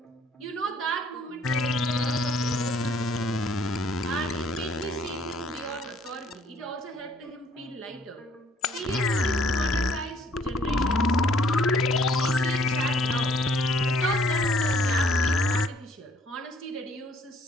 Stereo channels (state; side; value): normal; both; correlation 0.62